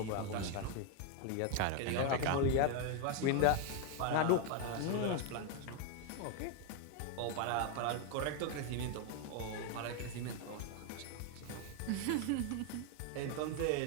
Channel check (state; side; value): different; both; correlation 0.01